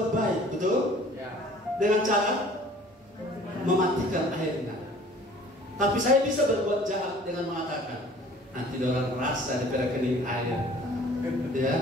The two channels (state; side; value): normal; both; correlation 0.50